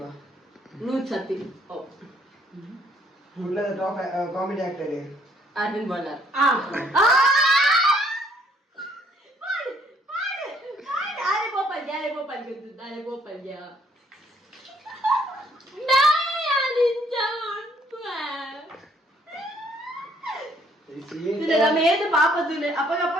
ನೂತ್ ಸತ್ತಿ Kudlata top comedy actor. Arvind Bolar ಆರೆ ಗೋಪಾಲ್ ಗೆದ್ದು ಆರೆ ಗೋಪಾಲ್ ನಮ್ಮ ಏದು ಪಾಪ ತುಲೆ ಅಪ್ಪಗಪ್ಪ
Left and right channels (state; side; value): normal; both; correlation 0.64